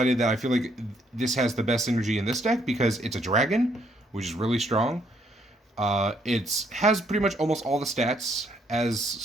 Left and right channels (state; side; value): normal; both; correlation 0.70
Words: that I feel like this has the best synergy in this deck because it's a dragon, which is really strong. It has pretty much almost all the stats as